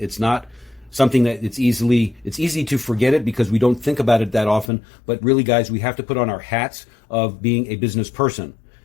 not something that it's easy to forget it because we don't think about it that often. But really, guys, we have to put on our hats of being a business person.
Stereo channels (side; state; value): right; drops out; at 4.7 s